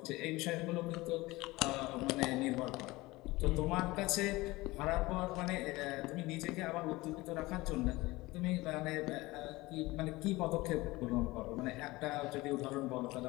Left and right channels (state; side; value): quieter; right; 20.6 dB